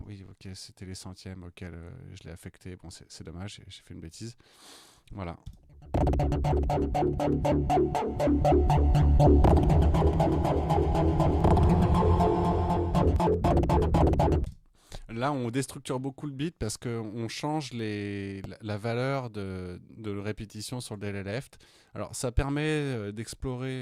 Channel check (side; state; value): both; identical; correlation 1.00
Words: oui, ok, c'était les centièmes auxquels je l'ai affecté. Bon, c'est dommage, j'ai fait une bêtise. Voilà. Là, on déstructure beaucoup le beat parce qu'on change la valeur de répétition sur le delay left. Alors, ça permet